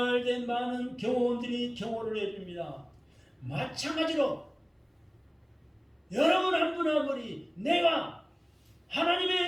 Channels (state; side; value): identical; both; correlation 1.00